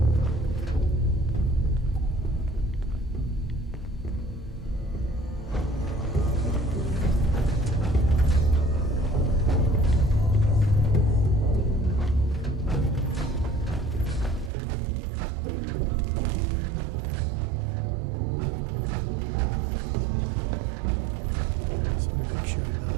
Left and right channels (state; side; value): drops out; left; at 14.5 s